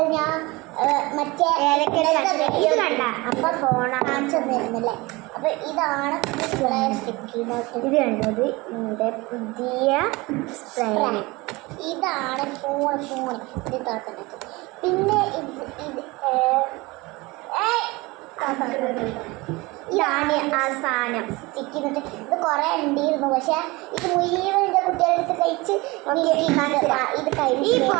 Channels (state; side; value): quieter; left; 23.1 dB